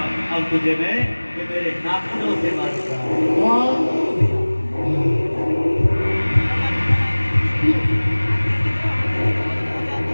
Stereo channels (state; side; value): inverted; both; correlation -1.00